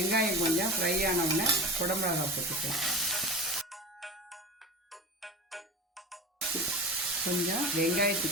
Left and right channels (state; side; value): normal; both; correlation 0.32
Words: கொஞ்சம் ஃப்ரை ஆனவுடனே குடமிளகாய் போட்டுக்கலாம். கொஞ்சம்